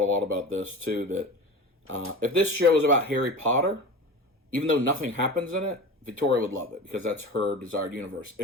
a lot about this too, that if this show is about Harry Potter, even though nothing happens in it, Victoria would love it because that's her desired universe.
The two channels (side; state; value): both; normal; correlation 0.32